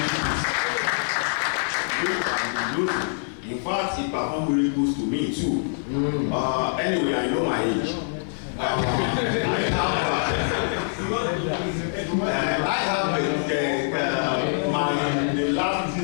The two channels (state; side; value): silent; right; digital silence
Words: In fact, it performed miracles to me too. Anyway, I know my age. I have the last